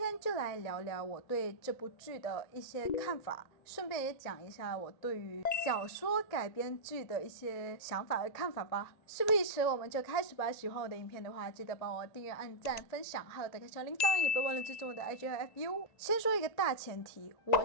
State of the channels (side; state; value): right; late; 1.9 ms